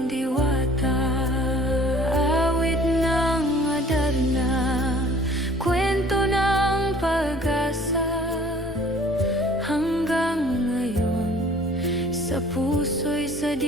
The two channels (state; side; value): normal; both; correlation 0.52